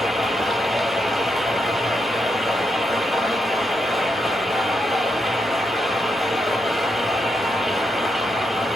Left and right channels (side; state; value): both; normal; correlation 0.82